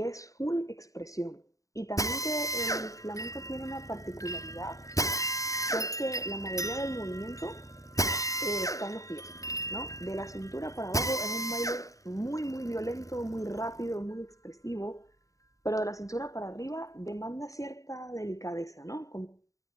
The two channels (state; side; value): late; right; 0.16 ms